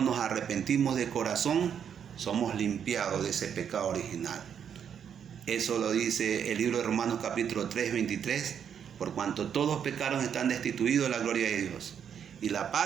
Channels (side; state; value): left; quieter; 8.1 dB